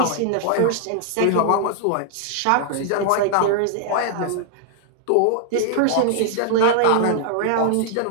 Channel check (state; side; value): different; both; correlation -0.01